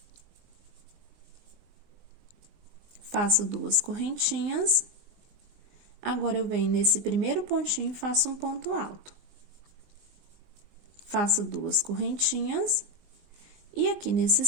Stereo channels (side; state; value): left; late; 20 ms